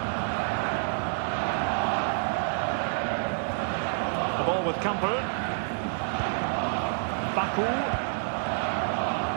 The ball with Campbell. Baku.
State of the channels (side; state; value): left; silent; 58 dB below the other